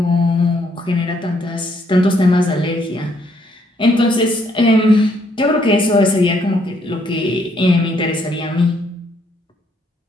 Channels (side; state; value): both; normal; correlation 0.70